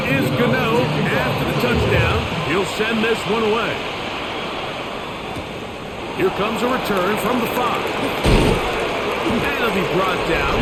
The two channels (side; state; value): both; identical; correlation 1.00